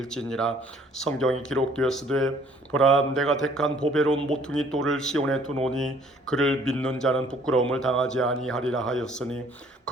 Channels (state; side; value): normal; both; correlation 0.59